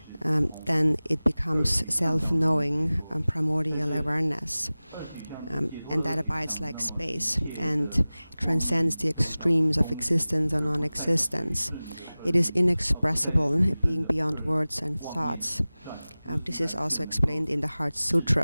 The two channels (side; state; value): both; inverted; correlation -0.98